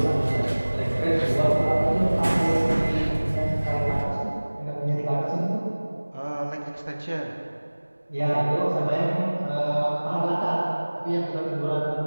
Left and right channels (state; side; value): inverted; both; correlation -1.00